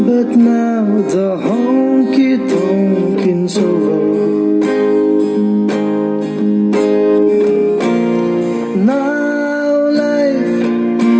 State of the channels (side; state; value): both; identical; correlation 1.00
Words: but now the honky tonking's over. Now life